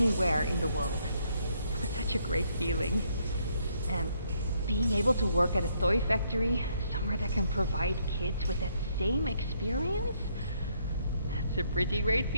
in the world. It was such a great feeling. And being able to work at a toy factory, somewhere that can provide kids with that same experience, that's a pretty great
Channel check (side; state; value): both; inverted; correlation -0.71